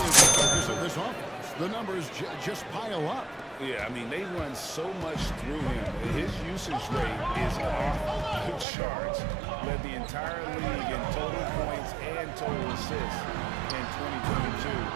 the focus of this offense. The numbers just pile up. Yeah, I mean, they run so much through him. His usage rate is off the charts. Led the entire league in total points and total assists in 2022.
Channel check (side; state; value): left; drops out; at 8.7 s